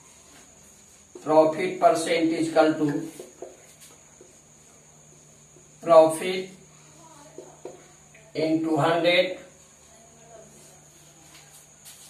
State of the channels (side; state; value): both; identical; correlation 1.00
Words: Profit percent equal to profit into 100